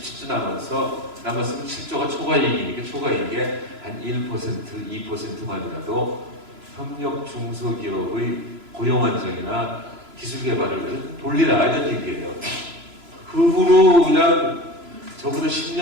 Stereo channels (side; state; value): left; late; 3.0 ms